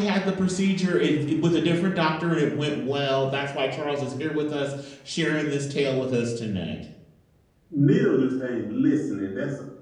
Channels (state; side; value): identical; both; correlation 1.00